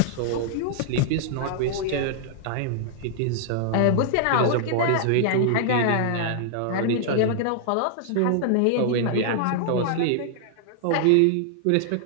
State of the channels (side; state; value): both; different; correlation -0.01